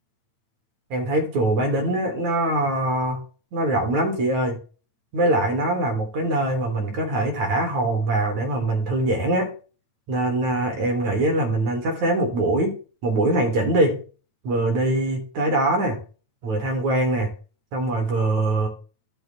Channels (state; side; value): late; left; 9.2 ms